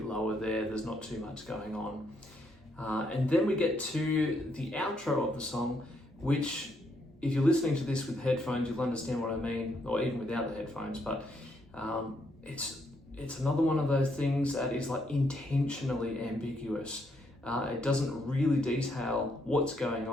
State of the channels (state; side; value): normal; both; correlation 0.75